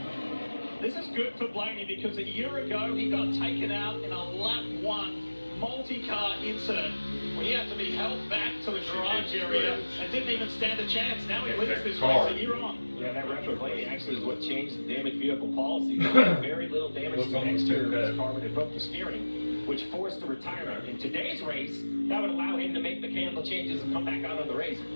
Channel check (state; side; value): inverted; both; correlation -1.00